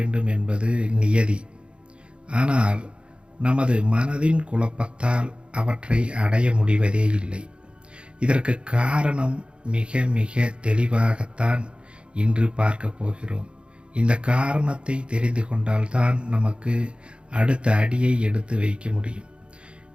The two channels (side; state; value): left; late; 0.057 ms